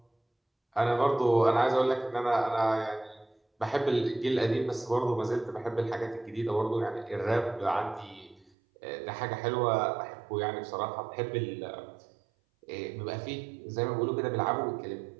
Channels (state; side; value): drops out; left; at 8.5 s